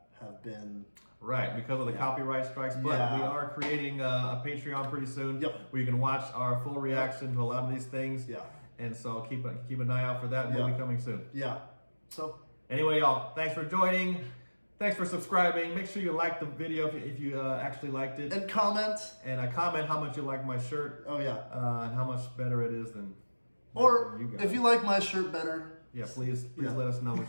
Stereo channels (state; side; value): inverted; both; correlation -1.00